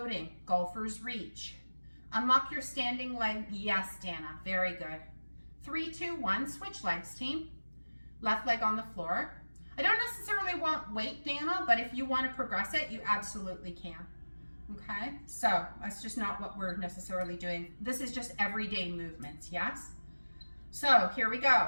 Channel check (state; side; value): inverted; both; correlation -1.00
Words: golfer's reach. Unlock your standing leg. Yes, Dana, very good. 3, 2, 1, switch legs, team. Left leg on the floor. I don't necessarily want weight, Dana, but if you want to progress it, you absolutely can. Okay, so that's just not what we're necessarily doing. This is just everyday movements, yes? So here we